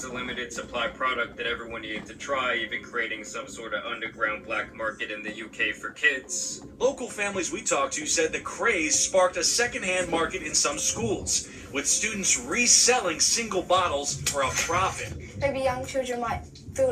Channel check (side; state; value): both; identical; correlation 1.00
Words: a limited supply product that everyone needed to try, even creating some sort of underground black market in the UK for kids. Local families we talked to said the craze sparked a secondhand market in some schools, with students reselling single bottles for a profit. Maybe young children might feel